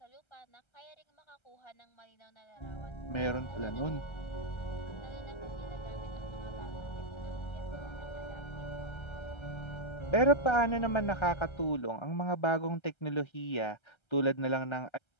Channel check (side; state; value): right; late; 1.3 ms